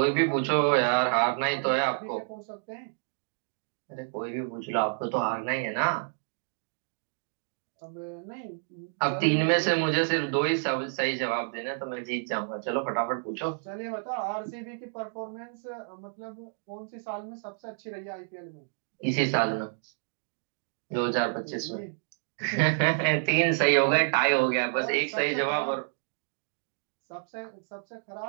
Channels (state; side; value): silent; left; digital silence